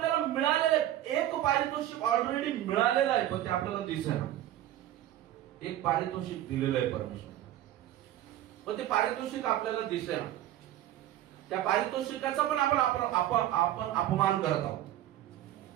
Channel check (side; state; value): left; quieter; 13.1 dB